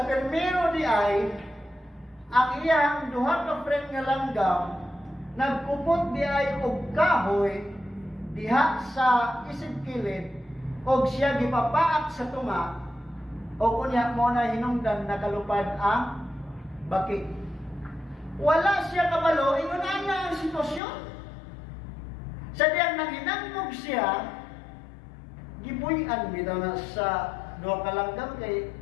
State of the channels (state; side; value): drops out; right; at 20.8 s